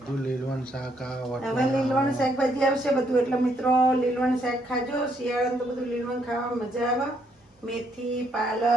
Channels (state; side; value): normal; both; correlation 0.72